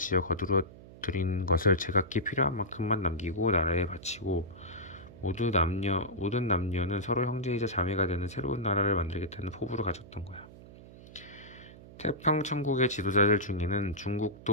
거두어 들인 것을 제각기 필요한 만큼만 남기고 나라에 바치고 모든 남녀는 서로 형제이자 자매가 되는 새로운 나라를 만들겠다는 포부를 가졌던 거야. 태평천국의 지도자들 중에는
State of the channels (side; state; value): right; noise; hum, 18 dB below the sound